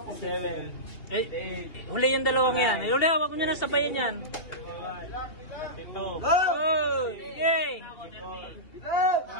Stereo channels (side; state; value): right; late; 2.7 ms